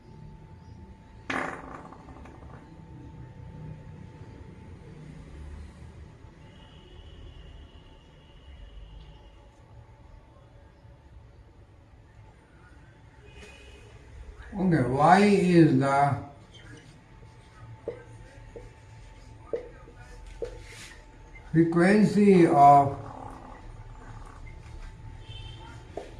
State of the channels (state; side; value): identical; both; correlation 1.00